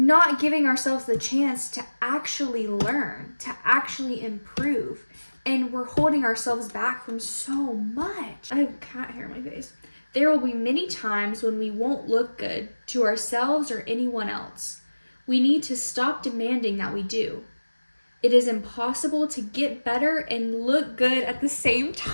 giving ourselves the chance to actually learn, to actually improve. And we're holding ourselves back from so much. I have cat hair in my face. There will be many times when we won't look good to ourselves or anyone else. We need to stop demanding that we do. It is impossible to get better and look good at the same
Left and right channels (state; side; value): inverted; both; correlation -1.00